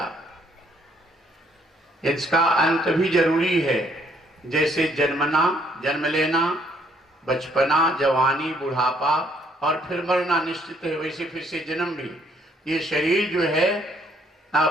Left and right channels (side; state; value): both; normal; correlation 0.67